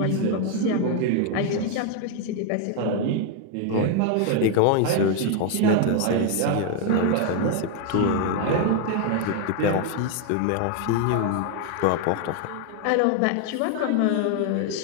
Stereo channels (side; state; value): both; different; correlation 0.01